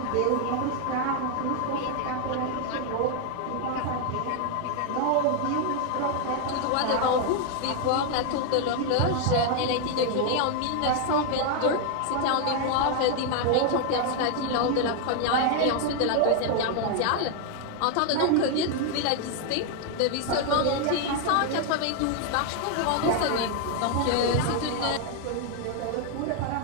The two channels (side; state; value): both; different; correlation 0.00